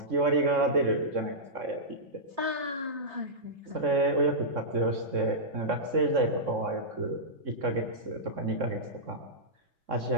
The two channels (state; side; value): late; left; 3.6 ms